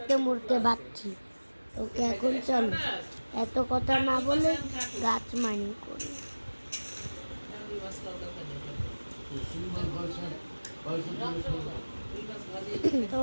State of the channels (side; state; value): both; inverted; correlation -1.00